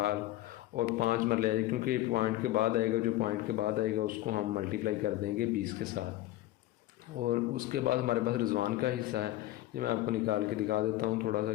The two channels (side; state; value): right; quieter; 16.0 dB